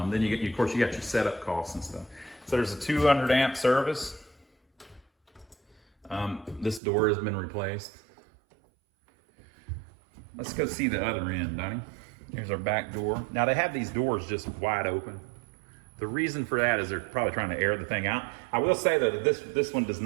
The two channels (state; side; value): drops out; left; at 6.8 s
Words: you get, of course, you got your setup costs and stuff. So there's a 200 amp service. This door has been replaced. Let's go see the other end, Donnie. Here's our back door. Now they have these doors just wide open. The reason for that is they're probably trying to air the thing out. I will say though that this one does